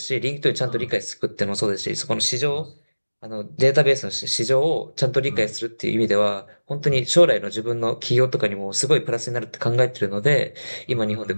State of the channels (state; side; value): inverted; both; correlation -1.00